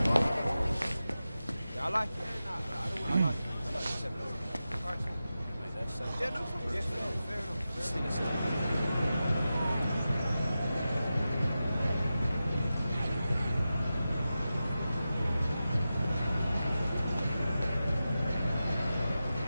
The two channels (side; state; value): both; inverted; correlation -0.92